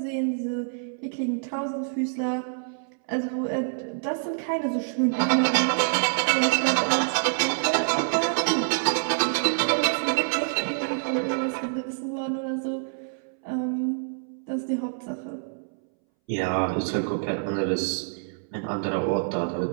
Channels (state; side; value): silent; left; 61 dB below the other